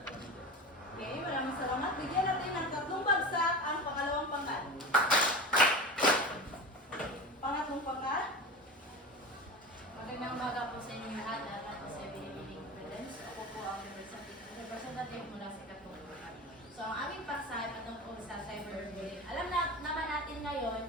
climate. Okay, maraming salamat. Bigyan natin ng tatlong bagsak ang pangalawang pangkat. Pangatlong pangkat. Magandang umaga po sa inyong lahat at ako si Evelyn Prudence. Ako po ang representative mula sa Katulungan. So, ang aming paksa ay patungkol sa cyberbullying. Alam naman natin ngayon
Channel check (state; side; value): normal; both; correlation 0.30